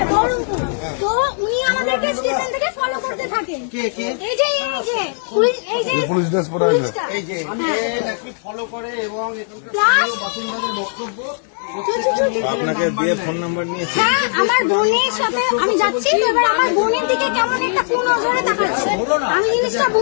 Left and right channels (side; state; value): right; silent; digital silence